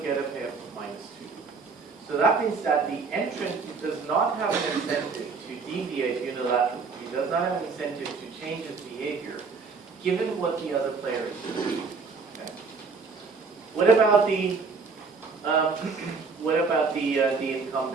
get a payoff of -2. So that means that the entrant does not have an incentive to deviate unilaterally. He does not have an incentive to change his behavior, given what the other player is doing. Okay. What about the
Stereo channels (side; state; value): left; quieter; 4.8 dB